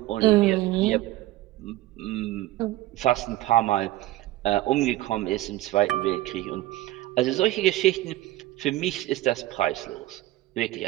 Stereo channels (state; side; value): quieter; left; 16.6 dB